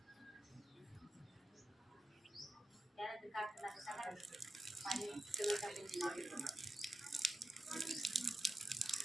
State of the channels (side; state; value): both; normal; correlation 0.91